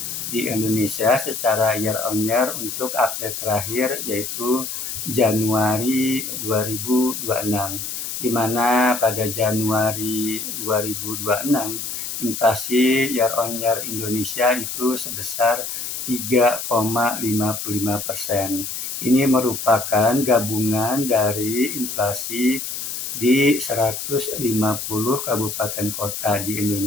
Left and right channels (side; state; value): left; noise; hiss, 5 dB below the sound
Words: di Indonesia secara year on year untuk update terakhir, yaitu Januari 2026, di mana pada Januari 2026 inflasi year on year Indonesia itu sebesar 3,55%. Ini merupakan gabungan dari inflasi di 150 kabupaten kota di